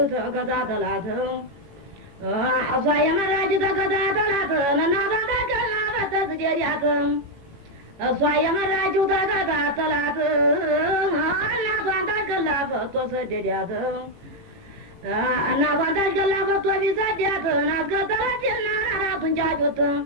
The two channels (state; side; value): late; left; 18 ms